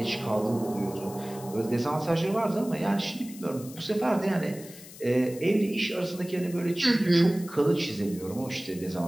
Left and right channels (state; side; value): noise; left; hiss, 17 dB below the sound